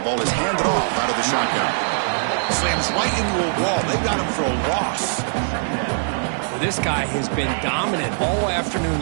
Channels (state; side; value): silent; left; digital silence